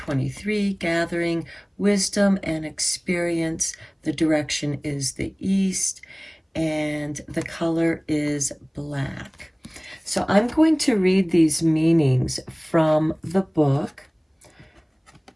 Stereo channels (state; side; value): identical; both; correlation 1.00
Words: gathering wisdom and experience. The direction is the east, and the color is black. So I'm going to read these meanings from the book